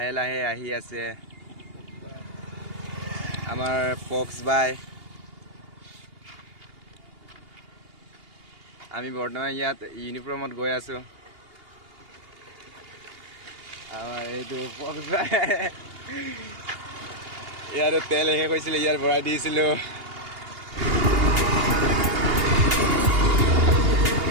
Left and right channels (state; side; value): late; left; 2.8 ms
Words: লাহে আহি আছে আমাৰ পক্স বাই আমি বৰ্তমান ইয়াত ইউনিফৰ্মত গৈ আছো আমাৰ এইটো পক্স বাই ইয়াৰ তেল শেষ হৈছিল ইয়াৰ ভৰাই দিছিলো